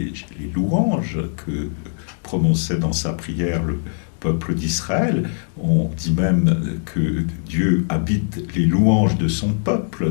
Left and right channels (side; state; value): right; silent; 65 dB below the other